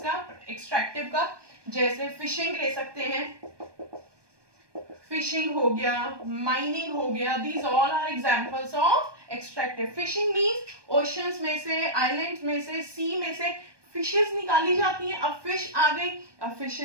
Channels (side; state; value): left; late; 1.2 ms